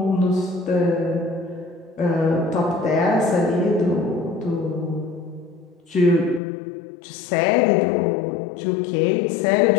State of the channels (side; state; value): right; drops out; at 6.4 s